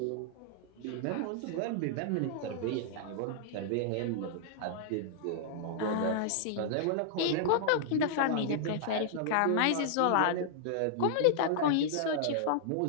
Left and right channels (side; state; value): both; different; correlation -0.01